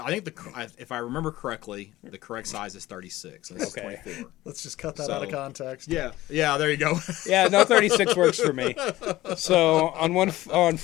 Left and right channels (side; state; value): right; quieter; 16.7 dB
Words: think if I remember correctly, the correct size is 36. And this Okay. is 24. Let's just cut that out of So- context. Yeah, there you go. Yeah, no, 36 works for me. So on